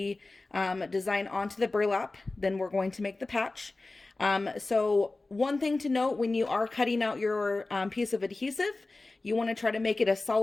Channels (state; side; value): quieter; right; 3.2 dB